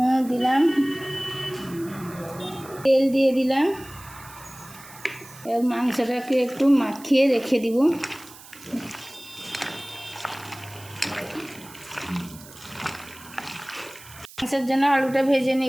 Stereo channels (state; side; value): noise; right; hiss, 19 dB below the sound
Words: দিলাম, তেল দিয়ে দিলাম। এবার মাংসটাকে একটু মাখিয়ে রেখে দিব। মাংসের জন্য আলুটা ভেজে